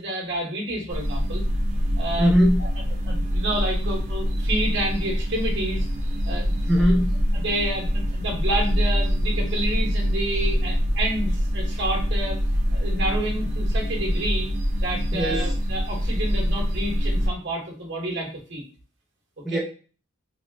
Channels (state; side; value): normal; both; correlation 0.80